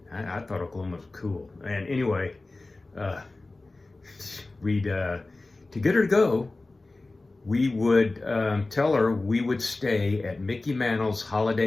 I thought Oklahoma was cool. And anyway, to get her to go, we would tell her we would stay at Mickey Mantle's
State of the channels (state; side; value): quieter; right; 3.2 dB